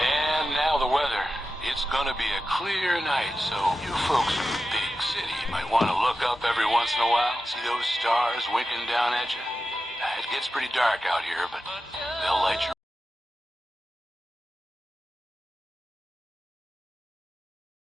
now the weather. It's gonna be a clear night, so you folks in the big city might want to look up every once in a while. See those stars winking down at you? It gets pretty dark out here, but they'll light you.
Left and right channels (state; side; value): normal; both; correlation 0.92